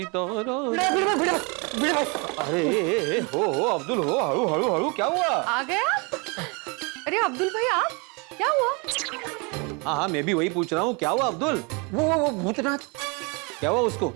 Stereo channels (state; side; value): quieter; left; 31.0 dB